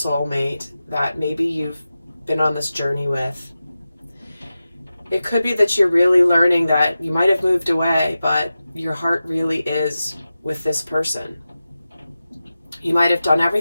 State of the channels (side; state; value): both; inverted; correlation -0.93